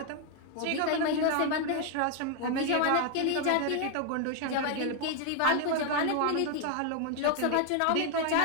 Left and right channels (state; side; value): different; both; correlation 0.00